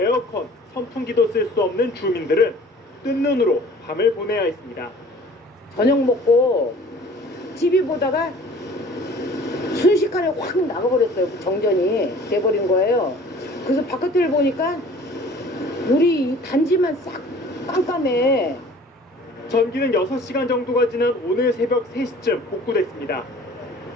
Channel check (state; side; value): normal; both; correlation 0.49